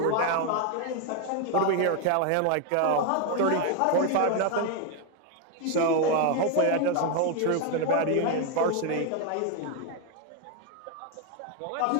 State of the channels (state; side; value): different; both; correlation 0.01